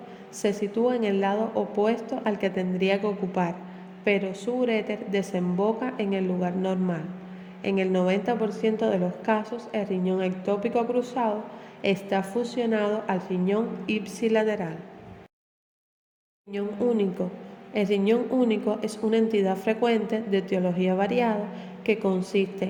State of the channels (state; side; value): identical; both; correlation 1.00